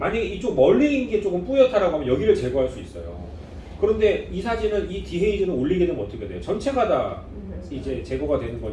이쪽 멀리 있는 게 조금 뿌옇다라고 하면 여기를 제거할 수 있어요. 그런데 이 사진은 이 디헤이즈는 올리게 되면 어떻게 돼요? 전체가 다 이제 제거가 되는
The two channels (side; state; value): both; identical; correlation 1.00